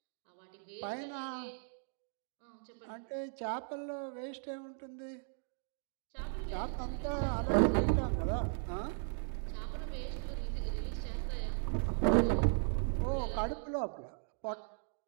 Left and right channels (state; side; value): silent; left; digital silence